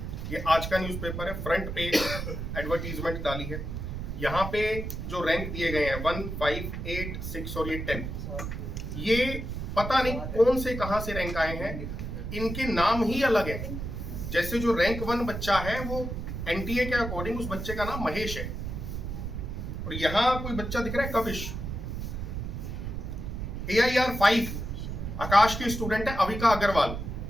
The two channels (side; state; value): right; noise; rumble, 5 dB below the sound